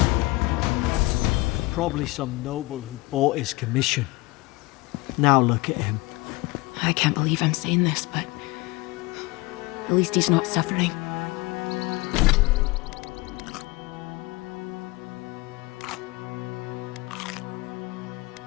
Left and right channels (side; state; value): right; quieter; 22.5 dB